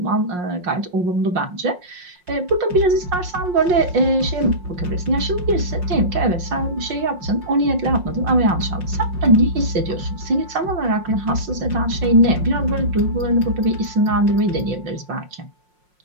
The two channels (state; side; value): late; left; 5.6 ms